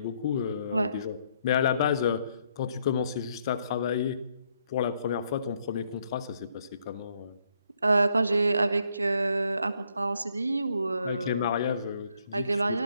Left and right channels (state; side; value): inverted; both; correlation -0.72